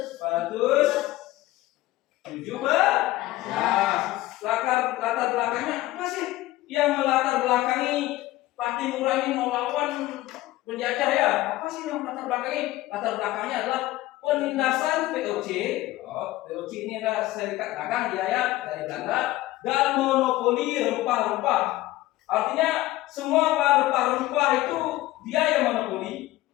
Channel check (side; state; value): right; quieter; 17.0 dB